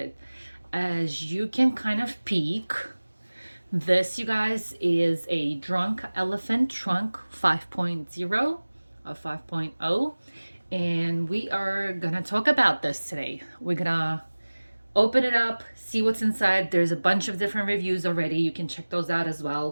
As you can kind of peek, this, you guys, is a Drunk Elephant Trunk 5.0 or 5.0. And we are gonna talk about this today. We're gonna open it up, see what's inside. There's a bunch of different reviews already. You can check those out as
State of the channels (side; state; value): both; inverted; correlation -1.00